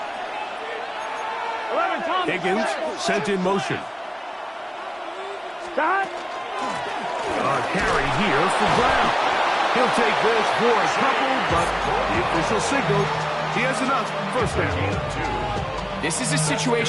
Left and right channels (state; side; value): identical; both; correlation 1.00